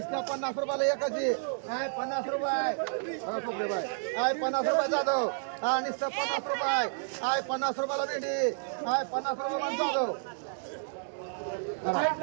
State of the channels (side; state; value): left; silent; digital silence